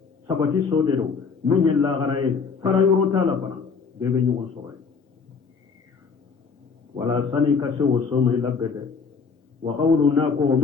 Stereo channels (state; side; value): quieter; right; 5.3 dB